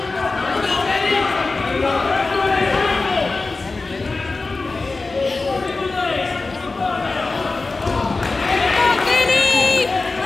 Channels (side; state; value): right; quieter; 3.7 dB